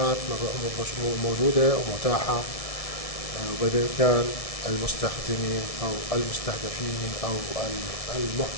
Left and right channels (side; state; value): right; late; 1.7 ms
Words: موجودة ومتاحة وبإمكان المستخدمين أو المستهدفين أو